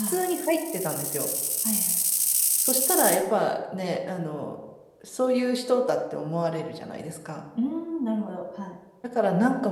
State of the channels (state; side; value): identical; both; correlation 1.00